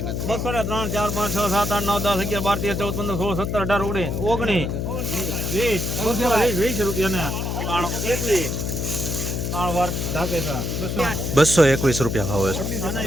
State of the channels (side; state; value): left; noise; hum, 2 dB below the sound